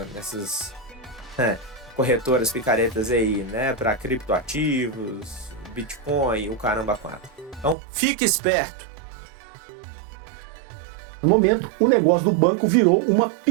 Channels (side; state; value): left; drops out; at 7.8 s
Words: nessas corretoras picaretas aí, né? Para criptoativos, Bitcoin, o caramba 4. Então, fique esperto. No momento, o negócio do banco virou uma